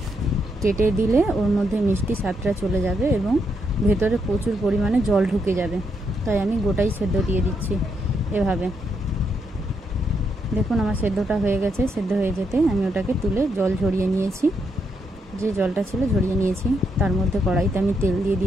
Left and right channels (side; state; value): both; normal; correlation 0.79